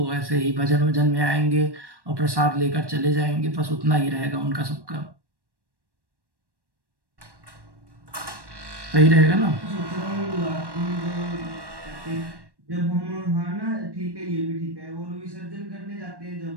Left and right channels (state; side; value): late; left; 1.1 ms